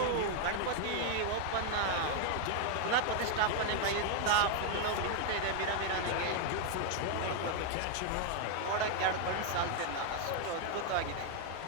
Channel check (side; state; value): both; different; correlation 0.00